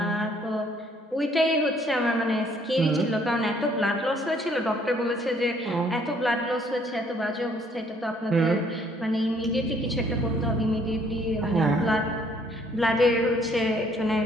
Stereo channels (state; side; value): normal; both; correlation 0.63